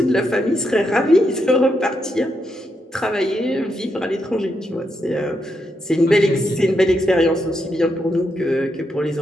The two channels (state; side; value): normal; both; correlation 0.82